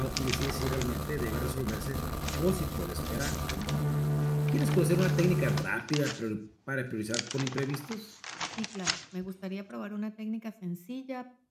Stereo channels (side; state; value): both; identical; correlation 1.00